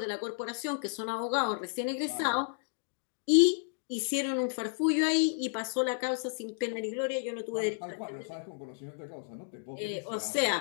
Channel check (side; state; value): right; silent; digital silence